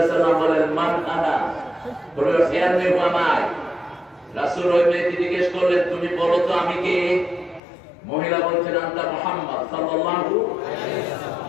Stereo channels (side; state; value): right; drops out; at 7.6 s